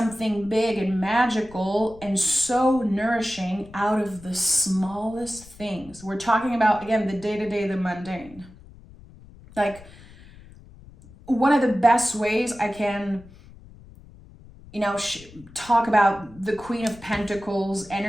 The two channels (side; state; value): left; noise; rumble, 21 dB below the sound